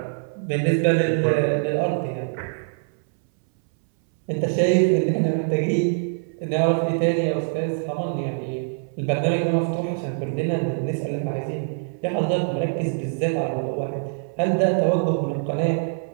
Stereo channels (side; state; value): left; silent; 61 dB below the other